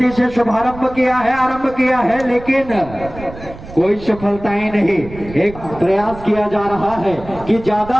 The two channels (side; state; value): right; noise; rumble, 15 dB below the sound